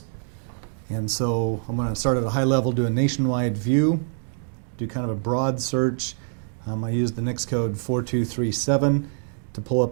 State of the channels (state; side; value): silent; left; digital silence